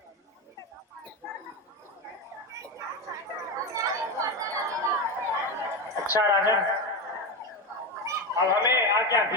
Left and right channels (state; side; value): normal; both; correlation 0.16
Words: अच्छा राजन, अब हमें आज्ञा